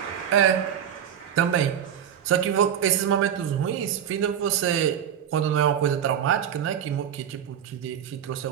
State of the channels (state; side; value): quieter; left; 9.2 dB